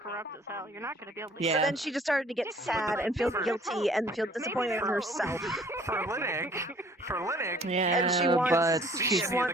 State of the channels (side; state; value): both; normal; correlation 0.56